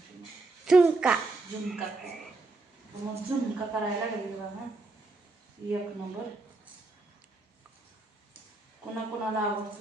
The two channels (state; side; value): quieter; left; 3.3 dB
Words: झुणका. झुणका खायचा. मग झुणका करायला लागेल बघा. एक नंबर. कोणाला